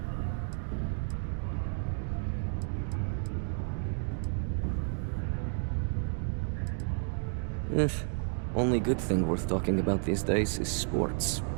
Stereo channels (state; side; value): silent; left; 57 dB below the other